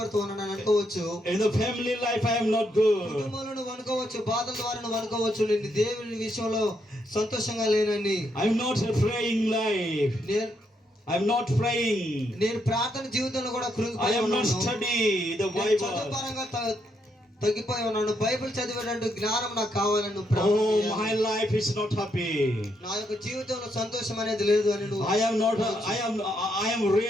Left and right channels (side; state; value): both; normal; correlation 0.77